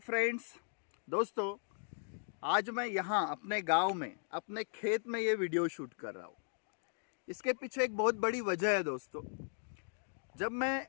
दोस्तों, आज मैं यहाँ अपने गांव में अपने खेत में ये वीडियो शूट कर रहा हूँ। इसके पीछे एक बहुत बड़ी वजह है दोस्तों। जब मैं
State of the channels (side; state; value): right; silent; digital silence